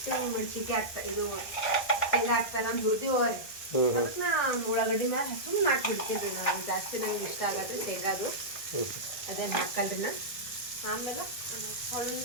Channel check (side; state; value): right; late; 1.6 ms